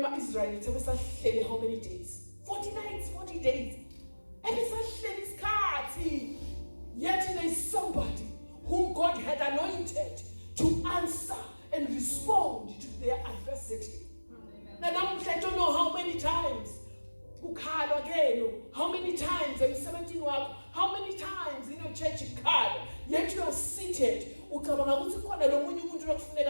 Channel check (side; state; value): both; inverted; correlation -1.00